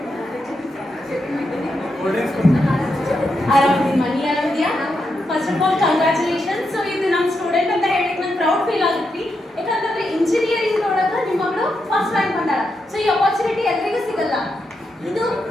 ಆರಾಮಿದ್ದೀನಿ ಮನಿ, ಆರಾಮಿದ್ಯಾ? First of all congratulations. So ಇದು ನಮ್ಮ ಸ್ಟೂಡೆಂಟ್ ಅಂತ ಹೇಳಿ ನಂಗೆ ಪ್ರೌಡ್ ಫೀಲ್ ಆಗುತ್ತೆ, ಯಾಕಂತಂದ್ರೆ ಇಂಜಿನಿಯರಿಂಗ್ ಒಳಗೆ ನಿಮ್ಮ ಮಗಳು ಫಸ್ಟ್ ರ್ಯಾಂಕ್ ಬಂದಾಳ. ಸೊ ಈ ಅಪರ್ಚುನಿಟಿ ಎಲ್ಲರಿಗೂ ಸಿಗಲ್ಲ, ಇದು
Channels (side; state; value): both; normal; correlation 0.84